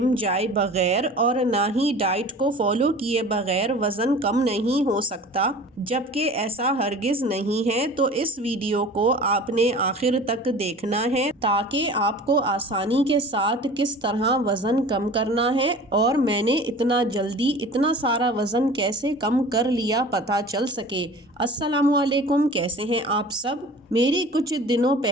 जाए बगैर और ना ही डाइट को फॉलो किए बगैर वज़न कम नहीं हो सकता, जबकि ऐसा हरगिज़ नहीं है। तो इस वीडियो को आपने आखिर तक देखना है ताकि आपको आसानी के साथ किस तरह वज़न कम करना है और मैंने इतना जल्दी इतना सारा वज़न कैसे कम कर लिया पता चल सके। अस्सलामुअलैकुम, कैसे हैं आप सब। मेरी कुछ दिनों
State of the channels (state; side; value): normal; both; correlation 0.41